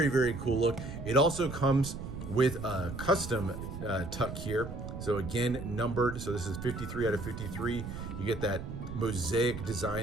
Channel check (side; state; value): right; noise; rumble, 8 dB below the sound